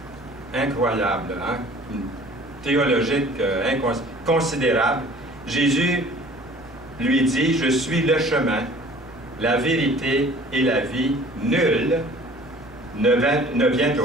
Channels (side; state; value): right; noise; hum, 23 dB below the sound